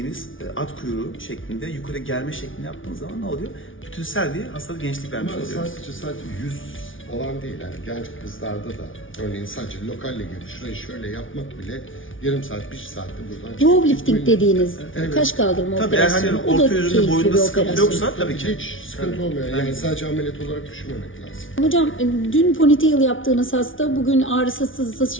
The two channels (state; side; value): late; right; 0.57 ms